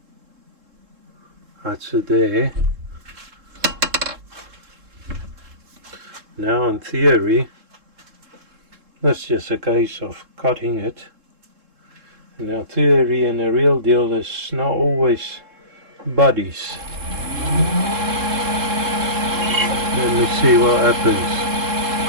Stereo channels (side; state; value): left; late; 3.7 ms